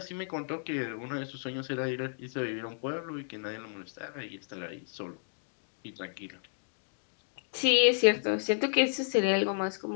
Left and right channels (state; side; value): silent; right; digital silence